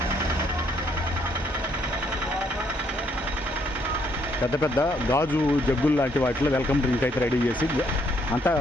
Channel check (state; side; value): normal; both; correlation 0.70